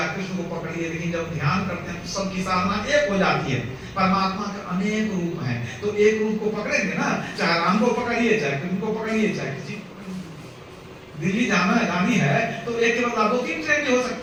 कृष्ण को पकड़िए, लेकिन जब ध्यान करते हैं तो सबकी साधना एक हो जाती है। परमात्मा के अनेक रूप हैं, तो एक रूप को पकड़ेंगे ना, चाहे राम को पकड़िए, चाहे कृष्ण को पकड़िए, चाहे किसी को पकड़िए। दिल्ली जानी है तो एक के बदला 2-3 ट्रेन भी हो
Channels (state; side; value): identical; both; correlation 1.00